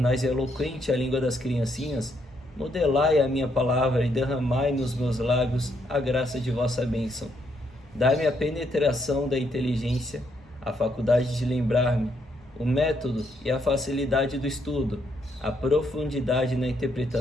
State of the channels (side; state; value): both; normal; correlation 0.74